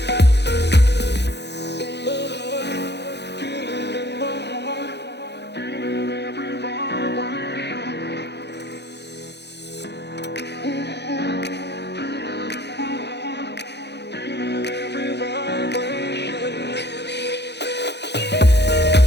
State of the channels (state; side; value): late; right; 0.50 ms